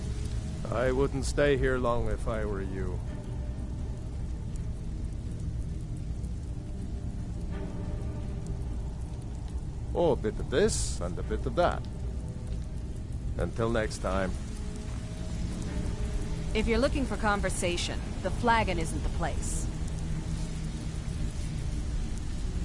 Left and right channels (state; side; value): identical; both; correlation 1.00